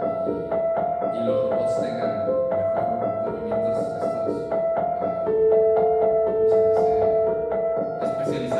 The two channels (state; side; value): identical; both; correlation 1.00